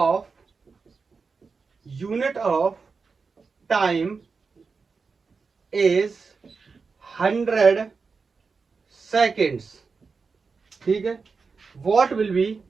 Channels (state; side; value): quieter; left; 4.8 dB